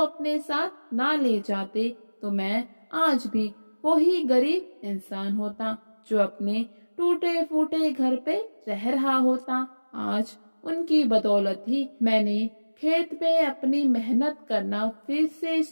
साथ ना ले जाते तो मैं आज भी वही गरीब इंसान होता जो अपने टूटे फूटे घर पे रह रहा होता। आज उनकी बदौलत ही मैंने खेत में अपनी मेहनत करना फिर से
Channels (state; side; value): inverted; both; correlation -1.00